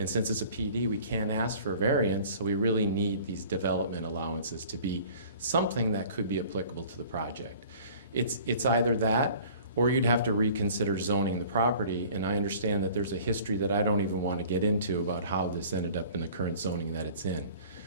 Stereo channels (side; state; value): both; inverted; correlation -0.48